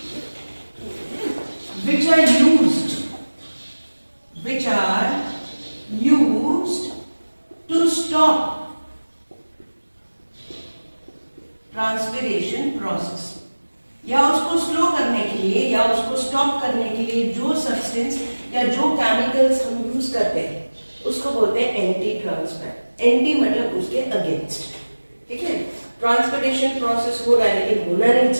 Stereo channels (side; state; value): both; inverted; correlation -1.00